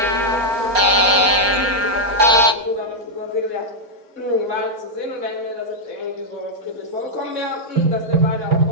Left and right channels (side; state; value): left; late; 4.3 ms